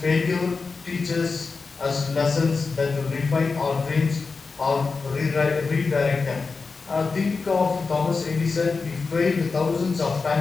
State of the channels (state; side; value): quieter; right; 4.4 dB